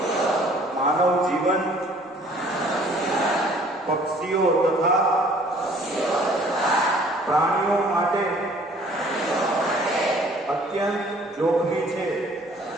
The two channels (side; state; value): both; normal; correlation 0.55